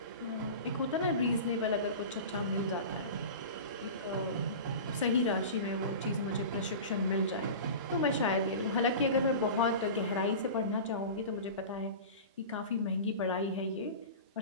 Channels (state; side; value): inverted; both; correlation -0.32